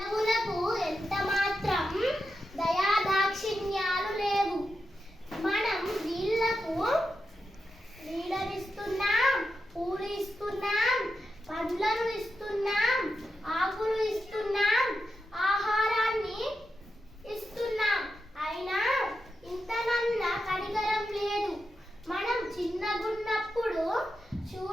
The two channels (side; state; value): both; normal; correlation 0.88